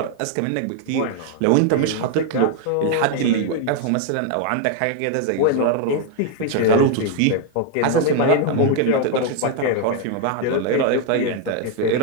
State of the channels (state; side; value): different; both; correlation 0.01